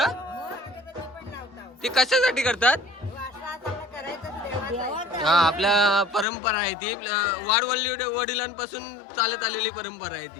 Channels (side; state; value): right; drops out; at 6.2 s